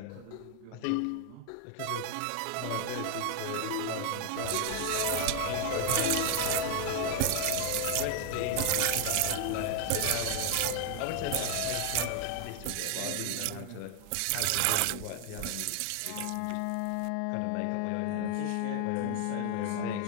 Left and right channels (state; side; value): different; both; correlation 0.00